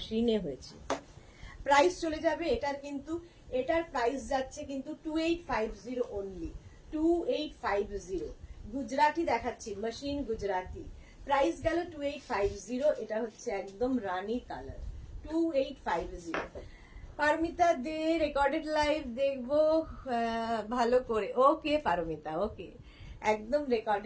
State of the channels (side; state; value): both; identical; correlation 1.00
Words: হয়েছে। প্রাইস চলে যাবে এটার, কিন্তু এটার প্রাইস যাচ্ছে কিন্তু 2850 অনলি, 2850। গুজরাটি দেখাচ্ছি, মেশিন গুজরাটি, প্রাইস গেল 2850। এটা হচ্ছে একদম রানী কালার, 2850। পারমিতা দে রেকর্ডেড লাইভ দেখবো ভালো করে। ওকে পারমিতা, ওকে, একদম